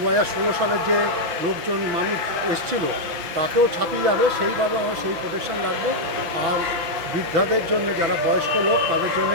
সালের যে লোকজন মানুষ এসেছিল তাকেও ছাপিয়ে যাবে, সেইভাবে আমরা সেই প্রোটেকশন রাখবো। আর বৃদ্ধাদের জন্য, যারা বয়স্ক লোক, তাদের জন্য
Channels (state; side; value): late; left; 5.9 ms